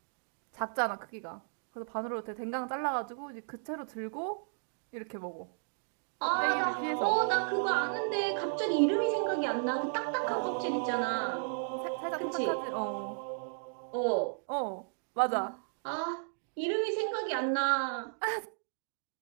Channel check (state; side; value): silent; left; digital silence